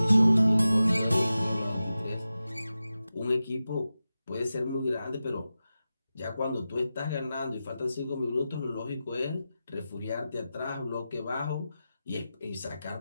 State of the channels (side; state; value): both; inverted; correlation -0.93